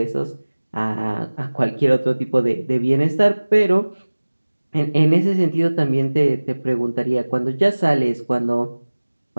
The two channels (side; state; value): both; inverted; correlation -1.00